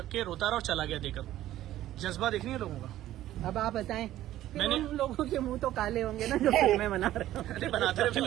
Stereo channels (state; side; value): quieter; left; 13.8 dB